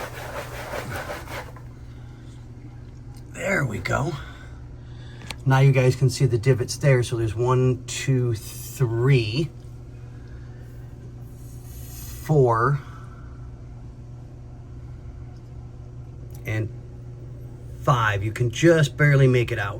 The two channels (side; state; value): both; identical; correlation 1.00